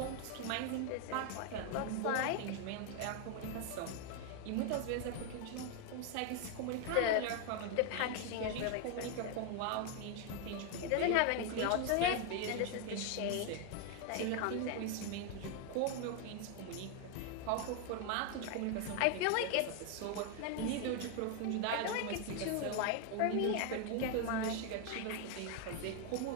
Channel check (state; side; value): different; both; correlation 0.01